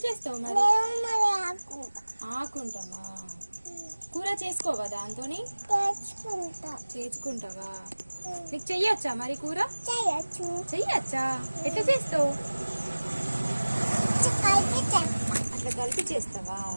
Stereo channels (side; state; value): both; inverted; correlation -1.00